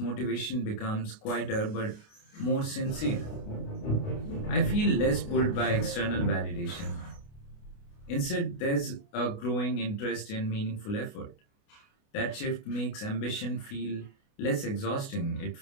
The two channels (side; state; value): right; late; 29 ms